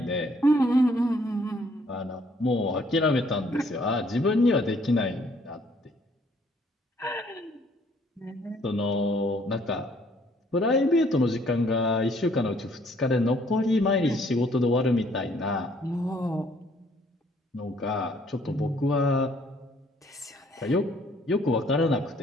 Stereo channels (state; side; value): normal; both; correlation 0.63